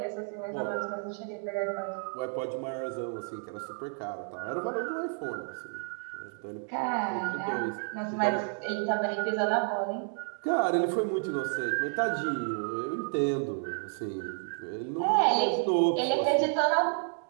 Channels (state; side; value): silent; left; 57 dB below the other